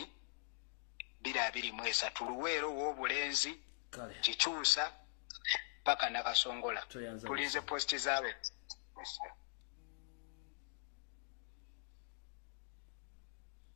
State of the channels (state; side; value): silent; right; digital silence